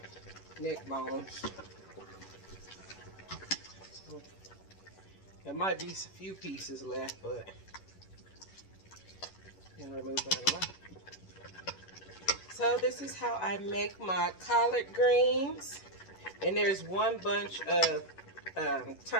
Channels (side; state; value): right; late; 11 ms